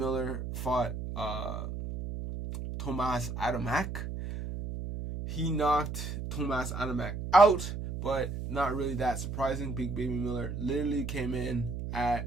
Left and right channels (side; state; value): right; noise; hum, 5 dB below the sound